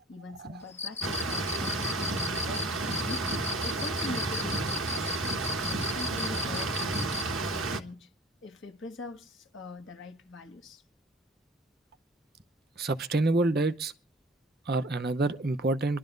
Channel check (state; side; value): normal; both; correlation 0.44